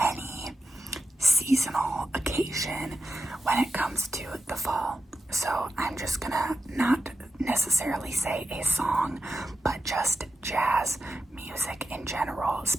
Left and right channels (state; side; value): normal; both; correlation 0.90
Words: seasonal occasion when it comes to the fall. So I'm just gonna not necessarily say a song, but just jazz music in general,